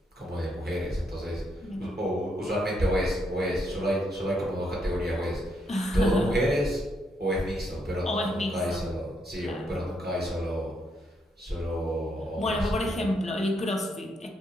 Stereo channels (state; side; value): normal; both; correlation 0.76